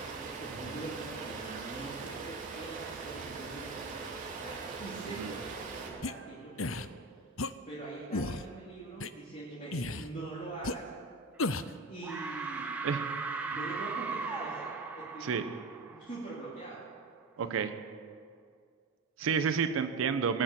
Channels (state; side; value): quieter; left; 3.5 dB